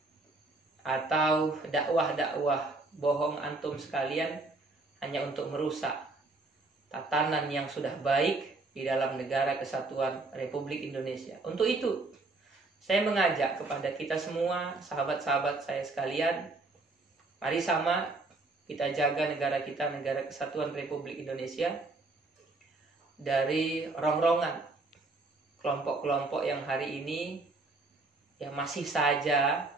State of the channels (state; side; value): quieter; left; 3.3 dB